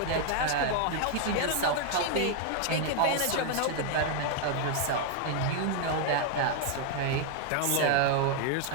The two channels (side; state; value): both; different; correlation 0.00